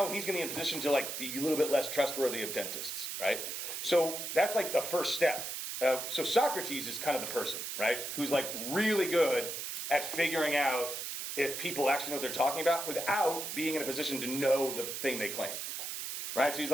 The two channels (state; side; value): noise; right; hiss, 5 dB below the sound